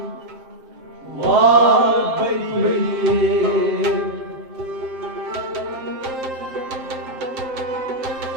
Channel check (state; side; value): late; left; 7.6 ms